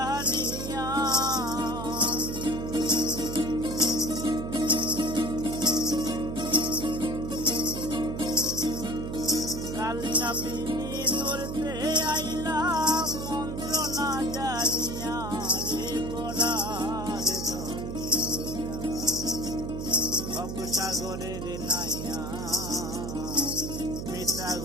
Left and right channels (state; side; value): noise; right; hum, 5 dB below the sound